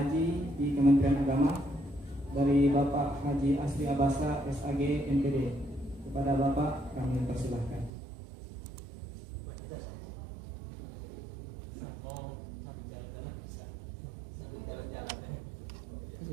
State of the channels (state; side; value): drops out; left; at 7.9 s